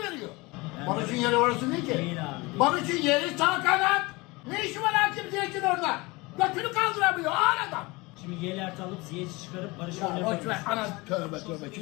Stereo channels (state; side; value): quieter; right; 24.0 dB